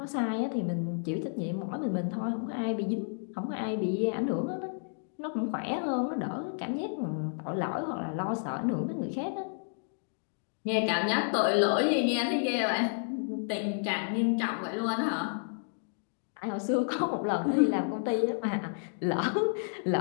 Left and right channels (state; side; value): silent; right; digital silence